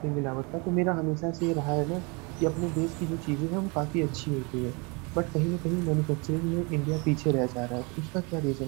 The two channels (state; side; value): quieter; left; 29.8 dB